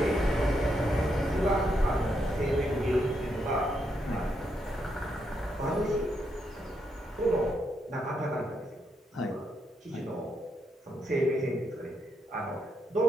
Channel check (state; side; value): normal; both; correlation 0.79